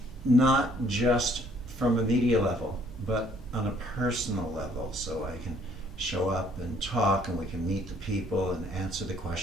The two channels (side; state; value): both; normal; correlation 0.62